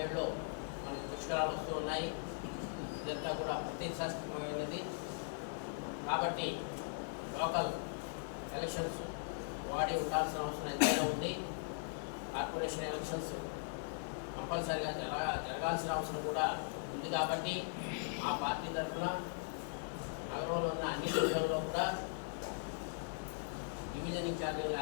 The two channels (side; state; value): right; silent; 51 dB below the other